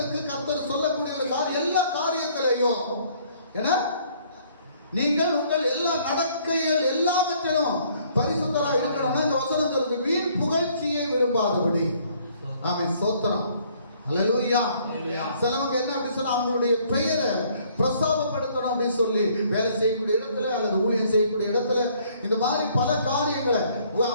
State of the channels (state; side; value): inverted; both; correlation -0.62